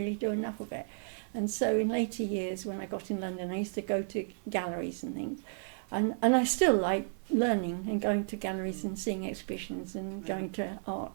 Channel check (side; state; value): left; silent; 56 dB below the other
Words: do enough of it. And so in later years, when I got in London, I used to go to galleries and things, and I still like learning and going to galleries and seeing exhibitions and going to art